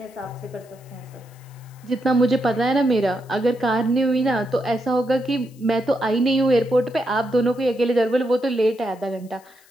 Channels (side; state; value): left; noise; hiss, 29 dB below the sound